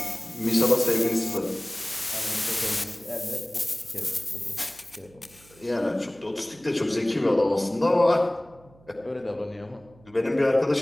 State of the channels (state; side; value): noise; right; hum, 27 dB below the sound